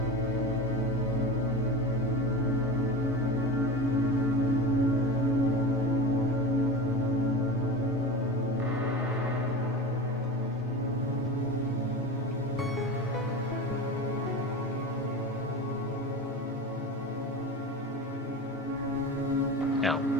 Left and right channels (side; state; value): both; normal; correlation 0.29